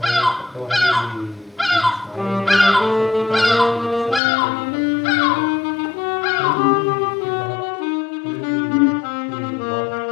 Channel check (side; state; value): right; drops out; at 4.2 s